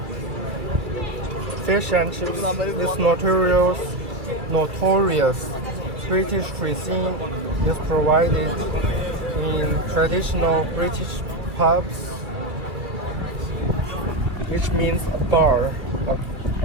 Fish and chips. This notorious British cuisine is provided in traditional British pubs, which means a bar.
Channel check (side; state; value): left; late; 2.5 ms